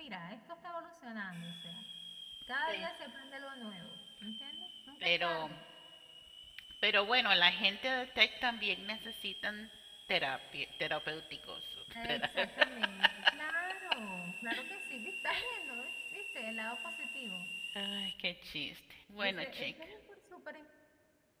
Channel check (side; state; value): both; identical; correlation 1.00